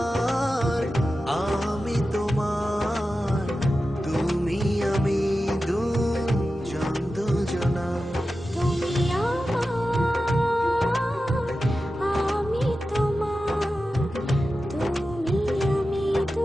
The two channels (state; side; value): normal; both; correlation 0.93